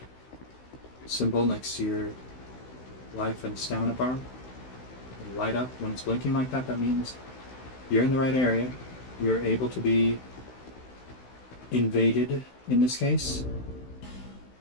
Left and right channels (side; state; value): right; late; 16 ms